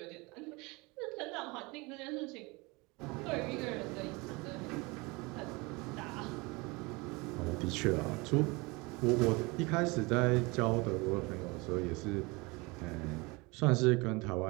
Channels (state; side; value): quieter; left; 25.6 dB